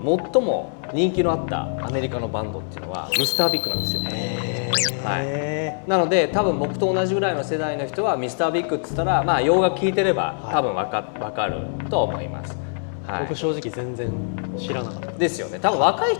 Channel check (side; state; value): right; silent; 61 dB below the other